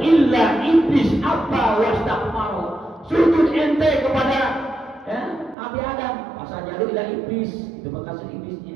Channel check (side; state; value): left; drops out; at 5.6 s